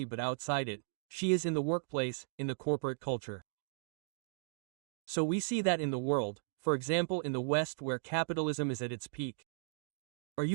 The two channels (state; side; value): silent; left; digital silence